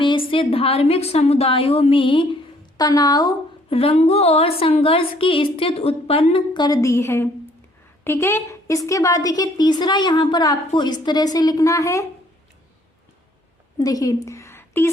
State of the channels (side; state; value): both; normal; correlation 0.62